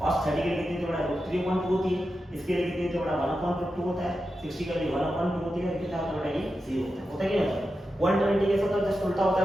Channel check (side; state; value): both; normal; correlation 0.90